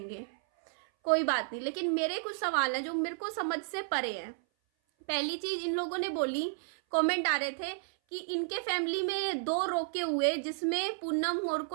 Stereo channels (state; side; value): silent; left; 56 dB below the other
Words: कोई बात नहीं। लेकिन मेरे कुछ सवाल हैं जो मेरे को समझ से परे हैं। पहली चीज इन लोगों ने बोली, कमेंट आ रहे थे कि इनके फैमिली में 2 रोके हुए जिसमें पूनम और